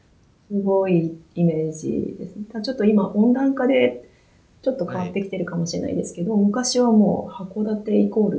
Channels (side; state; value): both; identical; correlation 1.00